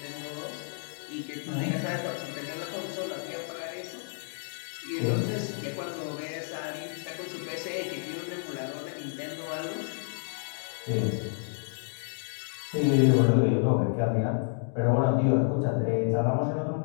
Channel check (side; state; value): right; silent; digital silence